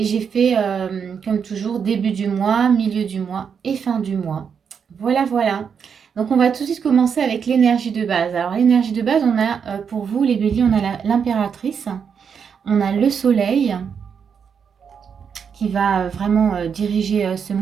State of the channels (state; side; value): quieter; left; 6.8 dB